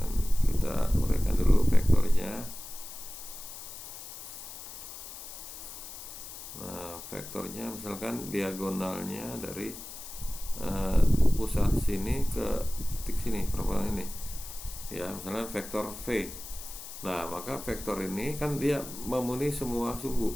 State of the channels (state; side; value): noise; left; hiss, 12 dB below the sound